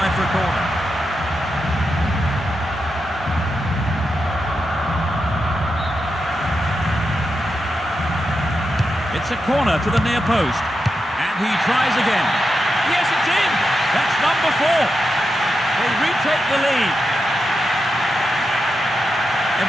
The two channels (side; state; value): both; normal; correlation 0.87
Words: for a corner. It's a corner to the near post. And he tries again. Yes, it's in. That's number 4. They retake the lead.